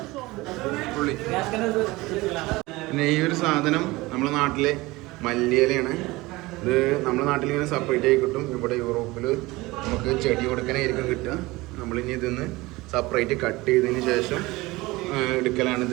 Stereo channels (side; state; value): left; quieter; 21.0 dB